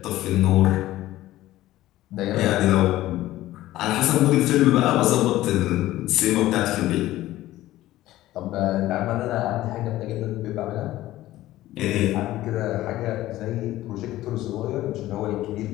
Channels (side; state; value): right; quieter; 15.5 dB